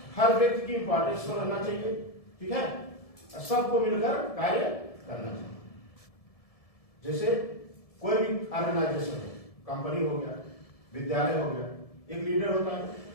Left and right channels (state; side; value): late; right; 1.7 ms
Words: हर व्यक्ति की इंपॉर्टेंस को रहना चाहिए, ठीक है, और सबको मिलकर कार्य करना चाहिए। जैसे कोई भी ऑर्गेनाइजेशन है, कंपनी हो गया, विद्यालय हो गया, एक लीडर होता है।